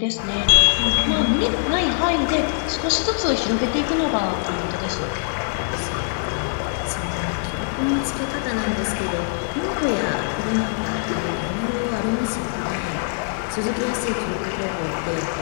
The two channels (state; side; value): silent; right; digital silence